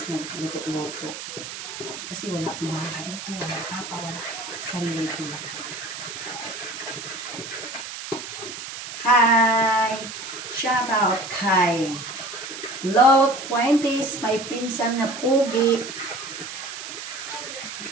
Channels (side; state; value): right; noise; hiss, 9 dB below the sound